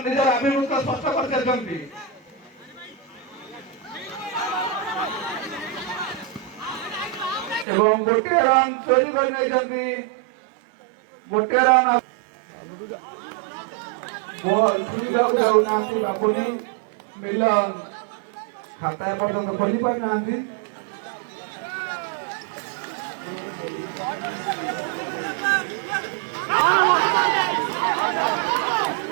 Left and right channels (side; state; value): left; drops out; at 7.7 s